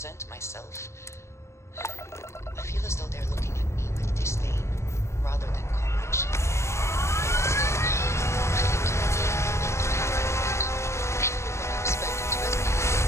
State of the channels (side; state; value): right; late; 0.13 ms